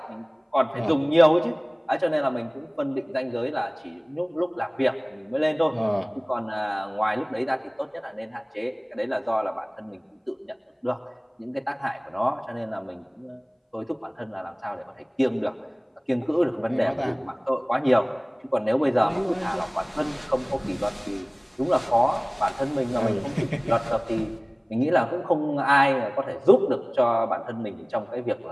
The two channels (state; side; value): identical; both; correlation 1.00